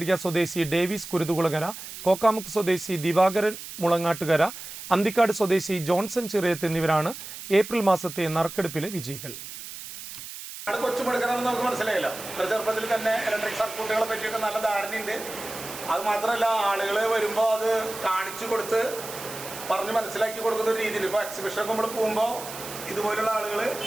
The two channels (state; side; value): noise; right; hiss, 11 dB below the sound